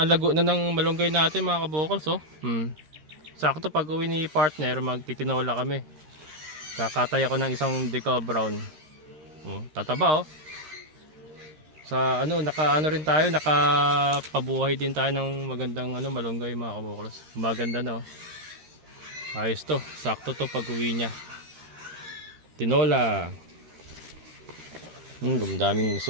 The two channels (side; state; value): left; late; 13 ms